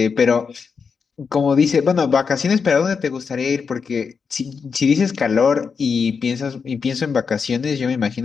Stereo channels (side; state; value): right; quieter; 5.7 dB